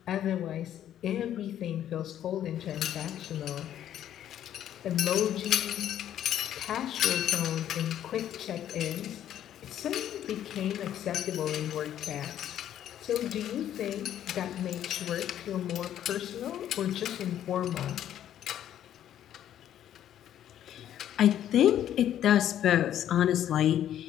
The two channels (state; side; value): quieter; right; 11.0 dB